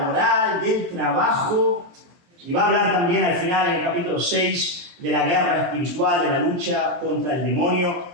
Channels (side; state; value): left; late; 23 ms